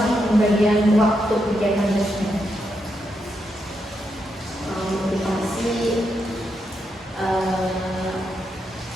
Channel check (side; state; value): both; normal; correlation 0.82